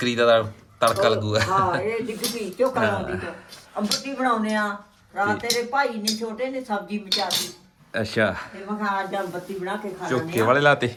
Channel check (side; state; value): both; identical; correlation 1.00